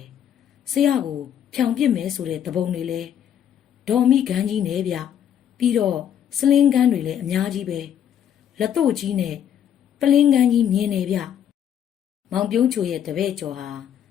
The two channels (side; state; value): right; quieter; 9.5 dB